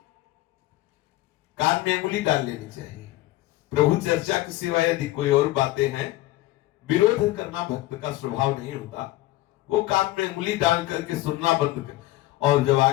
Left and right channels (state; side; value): quieter; right; 17.1 dB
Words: कान में अंगुली डाल लेनी चाहिए। प्रभु चर्चा के सिवा यदि कोई और बातें हैं, विरोध करना भक्त का स्वभाव नहीं होता। वो कान में अंगुली डाल करके सुनना बंद कर, और जब